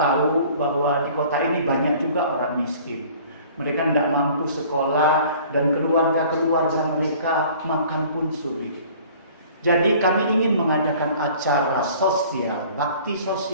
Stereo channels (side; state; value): both; inverted; correlation -0.50